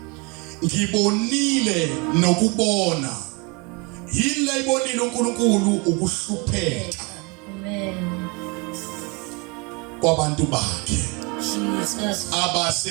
ngibonile nokubona. Yini ayibonile uNkulunkulu? Ukuhlupheka Amen. kwabantu bakhe Jesus.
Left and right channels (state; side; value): quieter; left; 29.6 dB